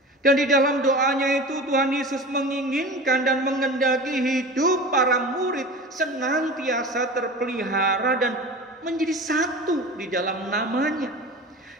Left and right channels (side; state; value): both; normal; correlation 0.33